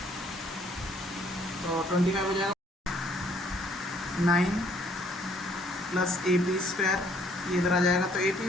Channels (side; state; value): both; normal; correlation 0.63